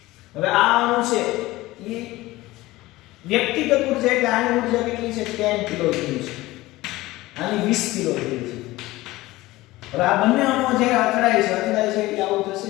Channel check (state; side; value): quieter; right; 18.6 dB